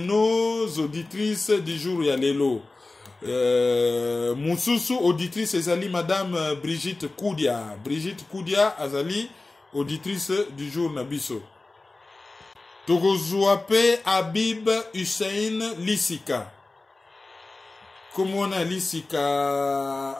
auditrices du jour ya lelo. Moussousou auditrice ezali madame Brigitte Koudia. Brigitte Koudia azali auditrice du jour nabiso. Togozuape Habib Hussein Lissika. Comment on a Lissika?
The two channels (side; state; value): right; quieter; 3.2 dB